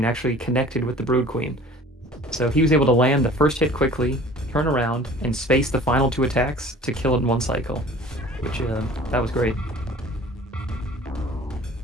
actually connected with the Brood Queen. So he was able to land the first hit quickly, turn around, and space the final 2 attacks to kill it in one cycle, which that was great.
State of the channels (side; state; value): both; normal; correlation 0.46